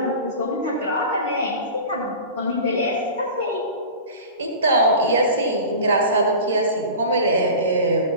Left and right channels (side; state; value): both; inverted; correlation -0.35